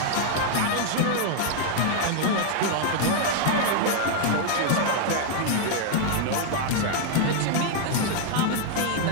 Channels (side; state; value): both; different; correlation 0.00